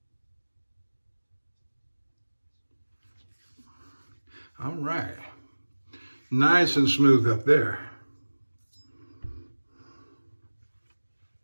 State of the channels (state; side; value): inverted; both; correlation -1.00